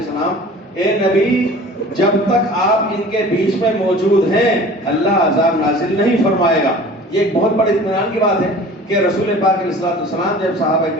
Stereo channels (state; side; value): normal; both; correlation 0.44